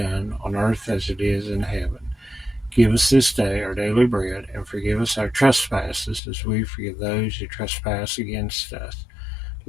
on earth as it is in heaven. Give us this day our daily bread, and forgive us our trespasses, as we forgive those who trespass against us.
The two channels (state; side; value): drops out; right; at 6.2 s